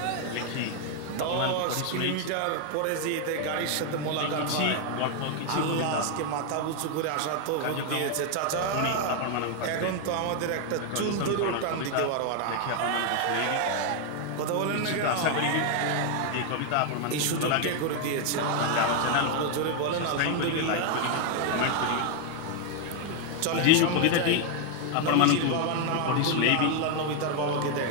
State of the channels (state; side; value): different; both; correlation 0.01